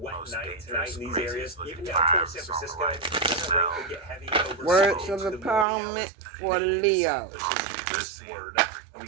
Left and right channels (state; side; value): drops out; left; at 5.7 s